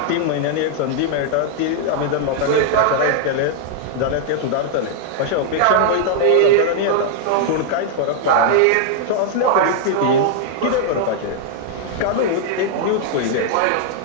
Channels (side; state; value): both; different; correlation 0.00